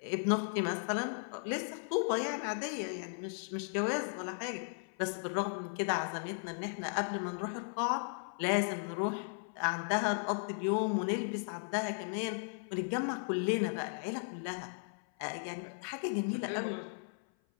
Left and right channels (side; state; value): right; silent; 54 dB below the other